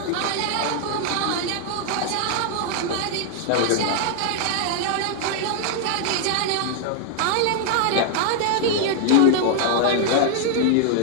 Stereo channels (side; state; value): both; different; correlation 0.00